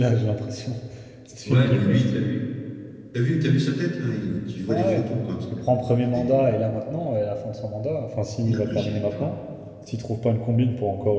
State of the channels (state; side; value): identical; both; correlation 1.00